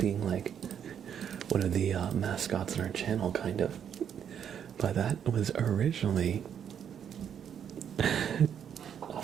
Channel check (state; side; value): quieter; left; 8.6 dB